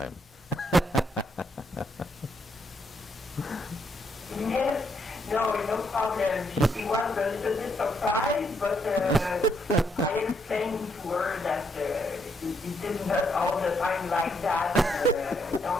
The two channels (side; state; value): both; normal; correlation 0.75